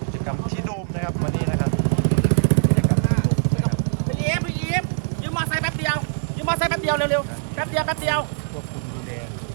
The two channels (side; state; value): left; silent; digital silence